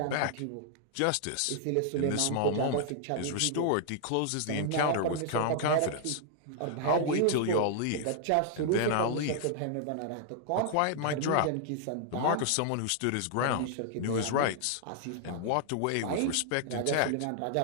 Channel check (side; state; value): both; different; correlation 0.00